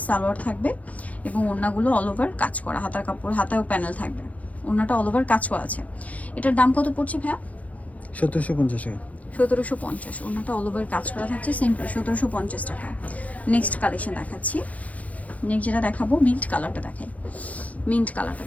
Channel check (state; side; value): late; right; 0.068 ms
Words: সালোয়ার থাকবে এবং ওড়নাগুলো অল ওভার কাজ করা, হাতার কাপড়, হাতায়ও প্যানেল থাকবে, ওড়নাটা অল ওভার কাজ করা আছে। এটার দাম কত পড়ছে ভাইয়া? 1750 টাকা। 1750। ওড়নাটা অল ওভার কাজ করা থাকছে, সেম প্রাইস 1750 টাকা। নেক্সট কালেকশন দেখাচ্ছি। নেক্সট যেটা দেখাবো, মিন্ট কালারটা দেখাই। মিন্ট কালারটা